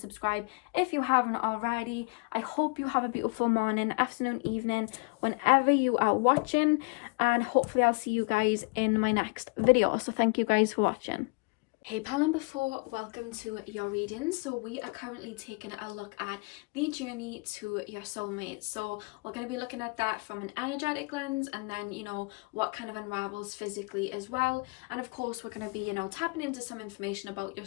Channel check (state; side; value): quieter; right; 30.8 dB